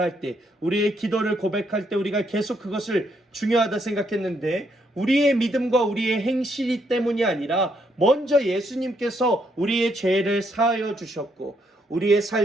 때, 우리의 기도를 고백할 때 우리가 계속 그것을 중요하다 생각했는데 우리의 믿음과 우리의 행실이 때문이 아니라 먼저 예수님께서 우리의 죄를 사하여 주셨고 우리의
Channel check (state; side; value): normal; both; correlation 0.74